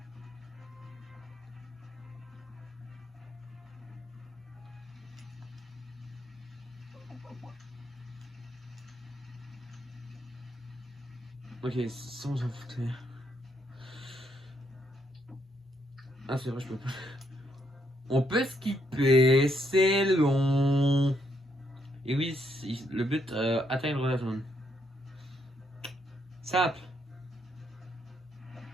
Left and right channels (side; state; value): both; normal; correlation 0.75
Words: Ok, ça on s'en foutait. Ah, c'est vrai, je peux pas. On peut skipper, c'est long. Et oui, le but, atteindre la zone. Simple.